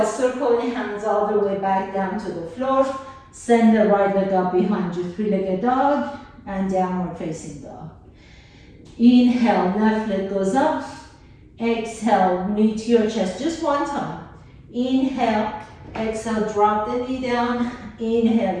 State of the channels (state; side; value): identical; both; correlation 1.00